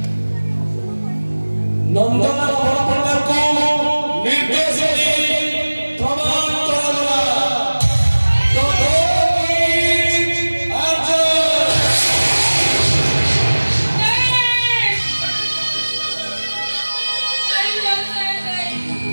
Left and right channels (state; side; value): inverted; both; correlation -1.00